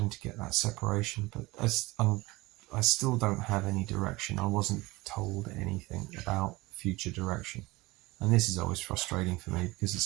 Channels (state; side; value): quieter; left; 21.3 dB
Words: to get that separation, but I still don't have any direction. I wasn't told anything about future direction. And this is always frustrating for me because